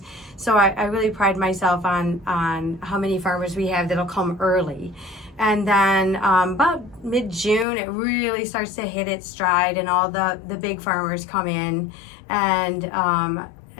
So I really pride myself on how many farmers we have that'll come early. And then about mid-June, it really starts to hit its stride, and all the big farmers come in, and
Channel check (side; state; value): right; drops out; at 7.7 s